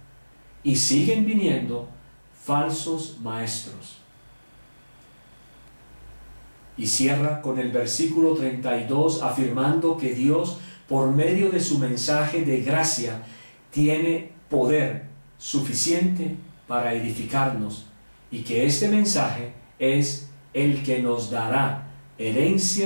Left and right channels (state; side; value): inverted; both; correlation -1.00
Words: y siguen viniendo falsos maestros. Y cierra con el versículo 32 afirmando que Dios, por medio de su mensaje de gracia, tiene poder suficiente para edificarnos, y que este mensaje es el que nos dará